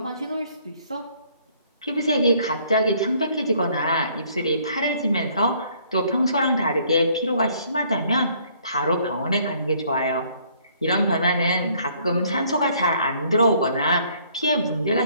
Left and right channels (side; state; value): both; inverted; correlation -0.63